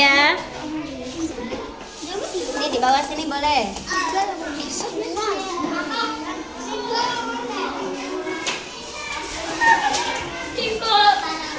Ini di bawah sini boleh.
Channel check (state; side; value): identical; both; correlation 1.00